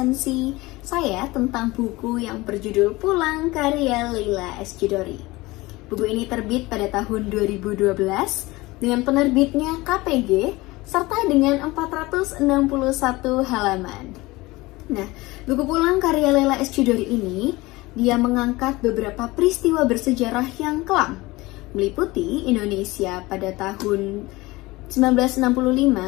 saya tentang buku yang berjudul Pulang karya Leila S. Chudori. Buku ini terbit pada tahun 2012 dengan penerbitnya KPG serta dengan 461 halaman. Nah, buku Pulang karya Leila S. Chudori ini dia mengangkat beberapa peristiwa bersejarah yang kelam, meliputi Indonesia pada tahun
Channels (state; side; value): quieter; right; 20.9 dB